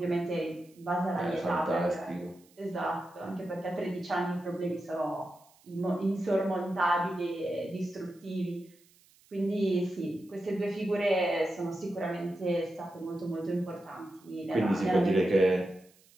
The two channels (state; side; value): noise; right; hiss, 30 dB below the sound